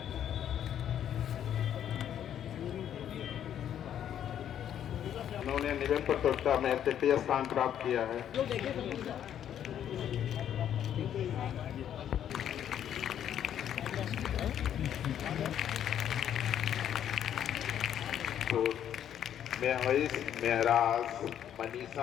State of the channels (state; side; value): quieter; right; 10.0 dB